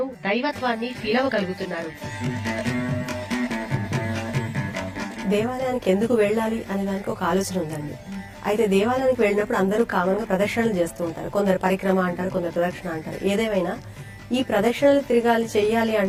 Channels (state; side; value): identical; both; correlation 1.00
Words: దైవత్వాన్ని ఫీల్ అవ్వగలుగుతున్నారు. దేవాలయానికి ఎందుకు వెళ్ళాలి అనే దానికి ఒక ఆలోచన ఉందండి. అయితే దేవాలయానికి వెళ్ళినప్పుడు అందరూ కామన్ గా ప్రదక్షిణలు చేస్తూ ఉంటారు. కొందరు పరిక్రమ అంటారు, కొందరు ప్రదక్షిణ అంటారు. ఏదేమైనా ఈ ప్రదక్షిణలు తిరగాలి, చెయ్యాలి